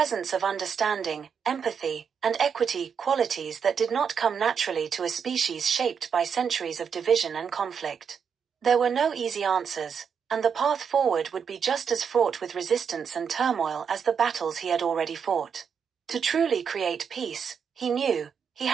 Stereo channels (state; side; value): quieter; left; 6.9 dB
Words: of understanding, empathy, and equity, qualities that did not come naturally to a species shaped by centuries of division and conflict. There were no easy answers, and the path forward would be just as fraught with resistance and turmoil as the battles he had already fought. To truly create peace, he knew, he